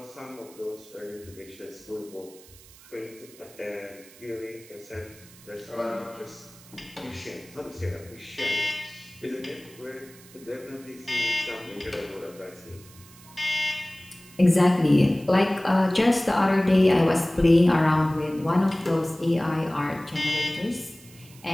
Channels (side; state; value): right; noise; hiss, 22 dB below the sound